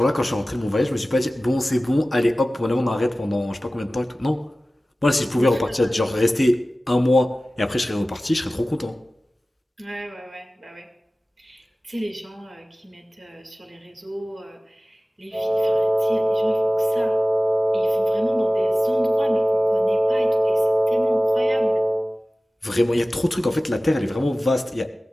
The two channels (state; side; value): normal; both; correlation 0.97